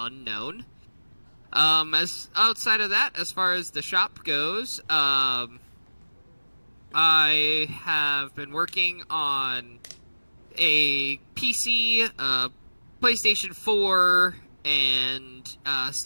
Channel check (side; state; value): both; inverted; correlation -1.00